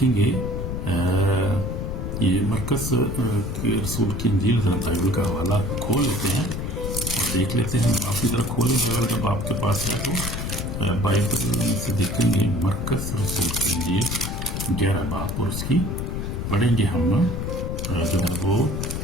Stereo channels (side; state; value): left; noise; rumble, 3 dB below the sound